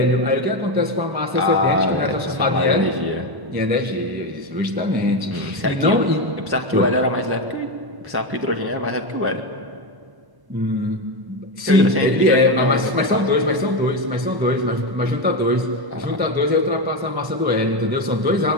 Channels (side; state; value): left; late; 1.1 ms